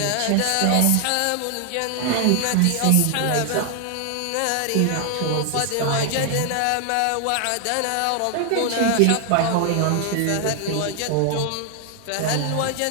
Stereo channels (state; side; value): different; both; correlation 0.00